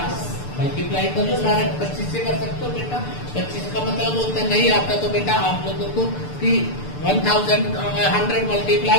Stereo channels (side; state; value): right; late; 6.8 ms